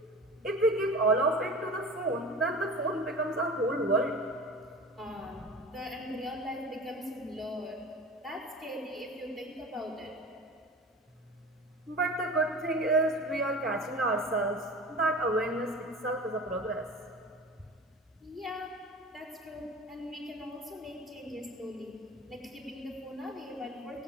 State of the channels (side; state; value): both; normal; correlation 0.36